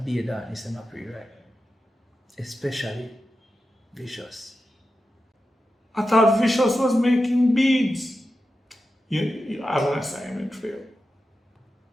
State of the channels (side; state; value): both; normal; correlation 0.91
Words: darkness is not pretty right. Especially Vicious. I thought Vicious was making beads. You have an assignment for you.